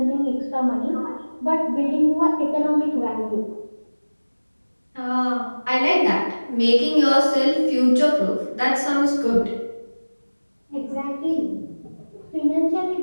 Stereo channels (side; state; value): both; inverted; correlation -1.00